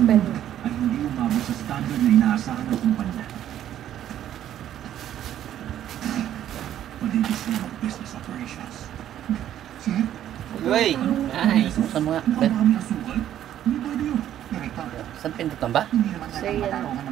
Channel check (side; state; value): left; quieter; 11.3 dB